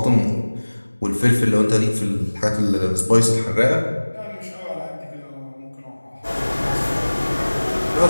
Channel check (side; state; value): both; inverted; correlation -1.00